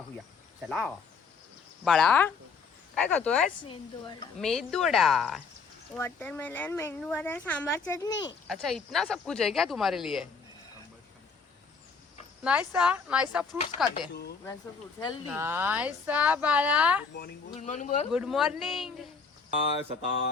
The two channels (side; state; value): right; quieter; 5.1 dB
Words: चला. बाळा काय खातोय? मेदूवडा, वाटरमेलन, मेंदूवडा, सांबार चटनी. अच्छा इतना सब कुछ है क्या तुम्हारे लिए? नाइसा नाइसा फ्रूट्स खाते. नाइसा बाळा, गुड मॉर्निंग. Good morning.